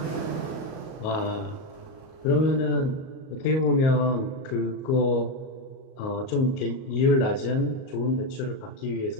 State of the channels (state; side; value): late; right; 38 ms